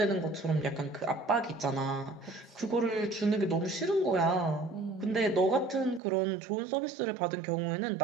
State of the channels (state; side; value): drops out; left; at 6.0 s